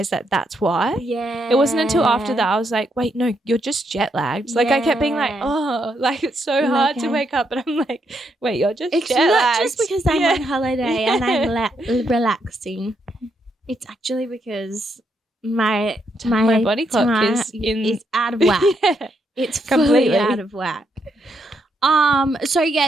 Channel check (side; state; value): both; normal; correlation 0.78